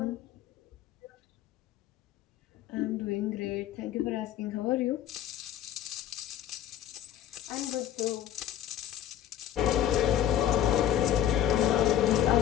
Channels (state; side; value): quieter; right; 11.2 dB